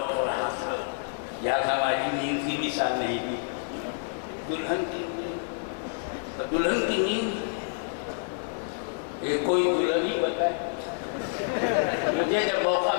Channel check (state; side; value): silent; right; 59 dB below the other